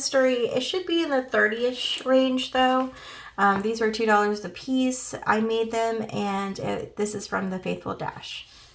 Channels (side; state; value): both; identical; correlation 1.00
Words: It should be in the 30-ish range though. These were $2 a piece. I made them, and this is from the Faithful Dash.